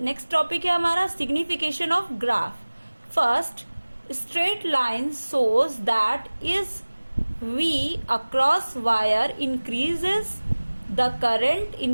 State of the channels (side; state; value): both; inverted; correlation -1.00